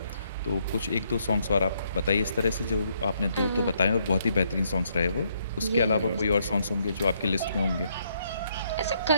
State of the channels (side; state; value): both; inverted; correlation -0.72